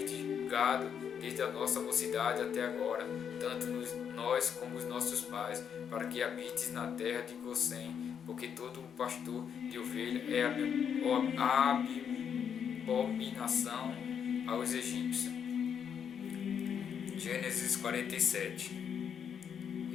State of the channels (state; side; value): quieter; right; 7.8 dB